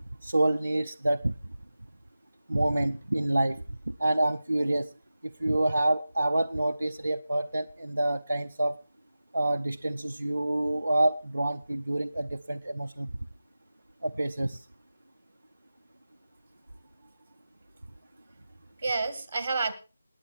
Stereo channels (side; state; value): both; inverted; correlation -0.95